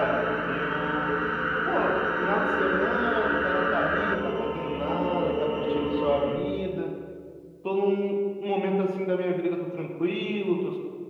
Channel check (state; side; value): identical; both; correlation 1.00